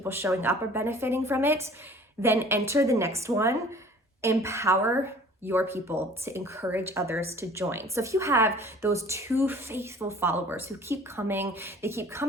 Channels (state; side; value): normal; both; correlation 0.49